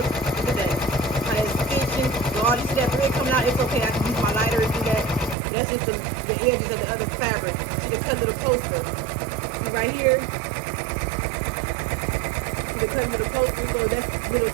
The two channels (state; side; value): drops out; left; at 5.4 s